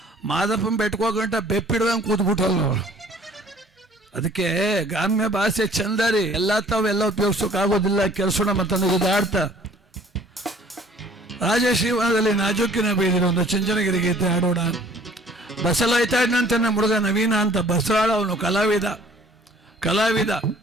ಮಾದಪ್ಪನ ಬೆಟ್ಕೋಗಂಟ ಬೆಪ್ಪಿಡ್ದಂಗೆ ಕೂತ್ಬಿಟ್ಟಲ್ಲ ಅವಳು. ಅದಕ್ಕೆ ಗ್ರಾಮ್ಯ ಭಾಷೆ ಚಂದ ರೀ, ಎಲ್ಲ ತಾವೆಲ್ಲ ಉಪಯೋಗಿಸೋಕ್ಕಾಗೋದಿಲ್ಲ. ಕೆಲಸೋಣ ಮತ್ತೊಂದು ಉದಾಡ್ತಾ ರಾಜಶ್ರೀವನದಲ್ಲಿ ನಾಜೂಕಿನ ಬೀದಿನ ಒಂದು ಚುಂಚನಗಿರಿ ಗೀತೆ ಆಡೋಣ. ಬಸಲಾಯ್ತಾಡ್ನಂತಾನೆ ಹುಡುಗ ನವೀನ ಅಂತ ಬಸರಾಳ. ಅವನು ಕಲಾವಿದ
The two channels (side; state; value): both; normal; correlation 0.54